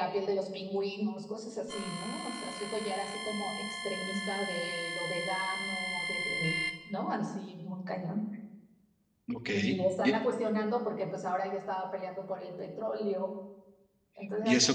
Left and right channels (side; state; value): both; identical; correlation 1.00